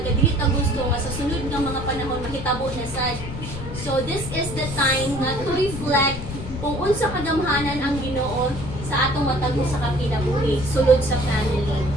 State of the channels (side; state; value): left; noise; rumble, 8 dB below the sound